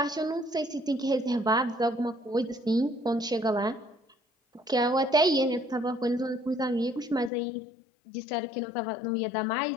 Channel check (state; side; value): drops out; right; at 7.3 s